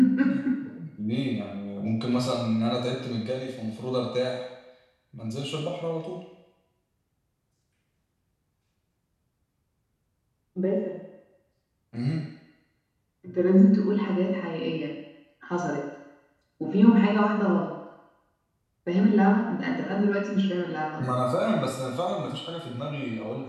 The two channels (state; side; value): identical; both; correlation 1.00